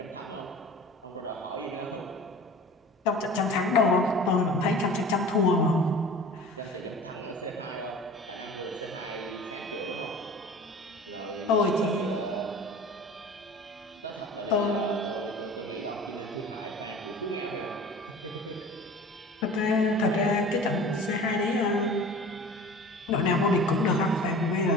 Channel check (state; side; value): normal; both; correlation 0.41